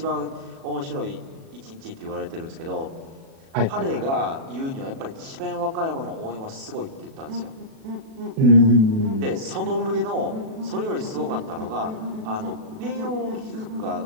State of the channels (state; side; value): late; left; 37 ms